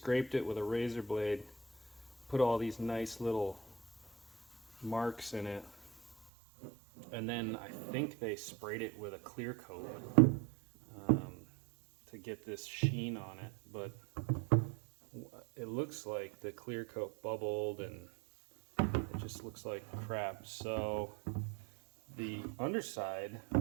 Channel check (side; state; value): left; drops out; at 6.2 s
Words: it with a razor blade, put all these nice little marks in it, and then I think they sprayed it with a clear coat to get this sheen on it, but it looks like the clear coat bubbled and it just looks like crap. So the underside,